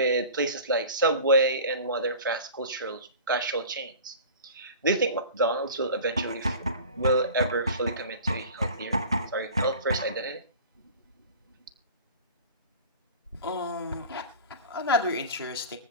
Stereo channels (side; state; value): both; inverted; correlation -0.40